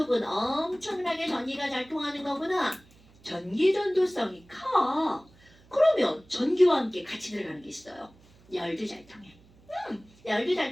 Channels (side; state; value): right; noise; hum, 28 dB below the sound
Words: 엄청나게 전기가 잘 통하는 거구나. 전기 전도성이 커. 그러면 전기와 함께 같이 들어가는 게 있어요. 열도 잘 통해. 열도